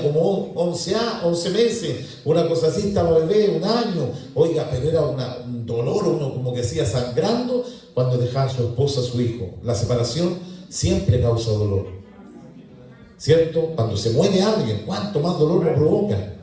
como 11 meses, una cosa así, estaba bebé, un año. Oiga, pero era un dolor, uno como que decía sangrando cuando dejaba a su esposa, a su hijo. La separación siempre causa dolor, ¿cierto? Cuando se muere alguien, ¿cuánto más dolor lo provoca?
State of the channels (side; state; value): both; identical; correlation 1.00